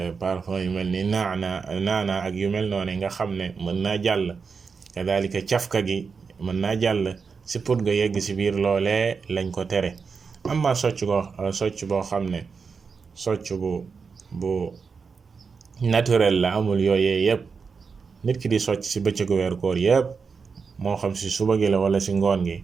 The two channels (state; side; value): quieter; left; 5.3 dB